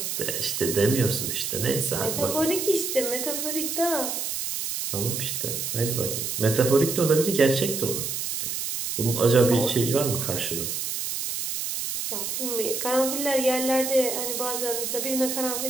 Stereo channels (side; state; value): right; noise; hiss, 3 dB below the sound